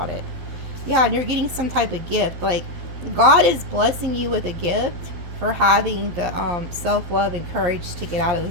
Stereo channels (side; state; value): left; late; 11 ms